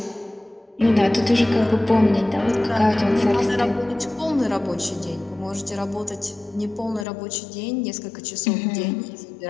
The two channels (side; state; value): right; drops out; at 7.1 s